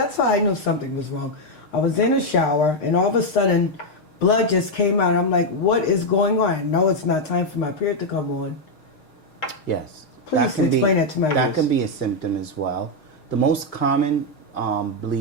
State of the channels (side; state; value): right; late; 6.5 ms